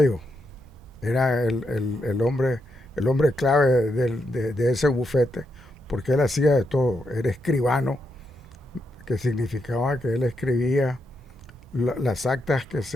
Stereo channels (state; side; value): normal; both; correlation 0.82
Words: Era el hombre clave de ese bufete, porque él hacía de todo. Era escribano, que significaba que él escribía las actas